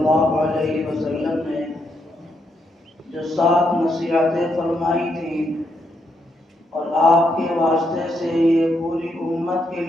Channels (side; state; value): both; normal; correlation 0.78